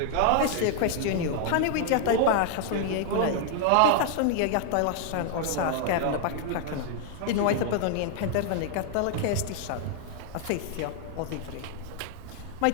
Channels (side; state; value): both; different; correlation 0.00